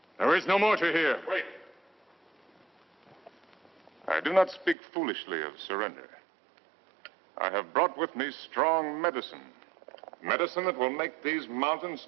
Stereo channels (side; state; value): left; drops out; at 4.8 s